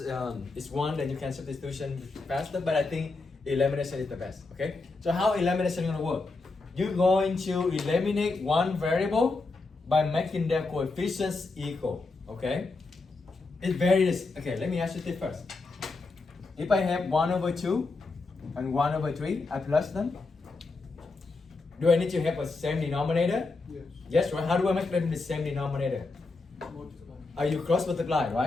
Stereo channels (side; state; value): right; quieter; 3.7 dB